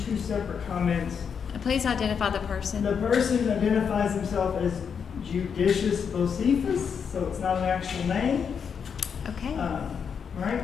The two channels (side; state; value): right; quieter; 6.8 dB